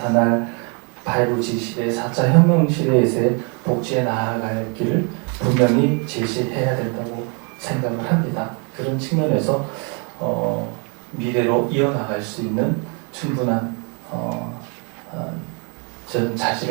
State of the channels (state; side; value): quieter; left; 35.8 dB